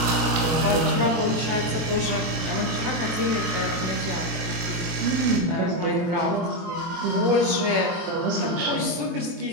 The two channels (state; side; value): late; left; 23 ms